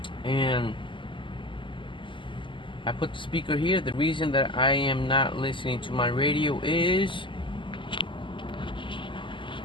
And I put the speaker here. The reason that I am not listening to my radio is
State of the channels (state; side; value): late; right; 0.24 ms